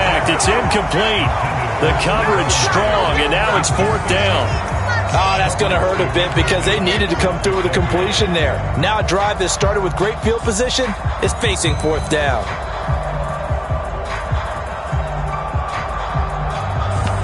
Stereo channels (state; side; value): identical; both; correlation 1.00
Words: It's incomplete. The coverage strong, and now it's 4th down. Oh, that's going to hurt a bit because they needed to come through with a completion there. Now a drive that started with great field position is facing 4th down.